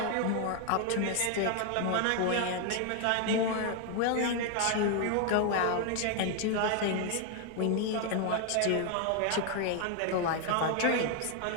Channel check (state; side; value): different; both; correlation 0.01